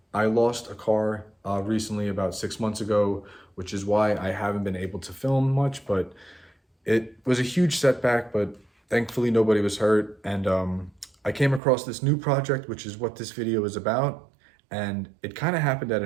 I lost a car recently about 6 months ago, which is why I haven't been able to film much, but it was a huge setback, but thankfully nobody was hurt. And I came across this new project, which is what this video is about. And it kind of happened out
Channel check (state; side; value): drops out; left; at 11.6 s